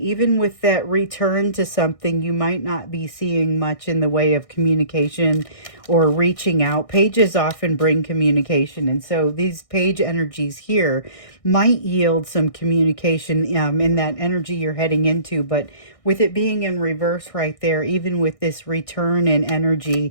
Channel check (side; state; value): right; late; 1.6 ms